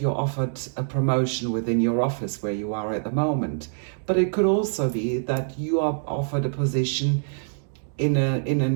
you're offered a promotion within your office where you are at the moment. But it could also be that you are offered a position in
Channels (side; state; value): left; silent; digital silence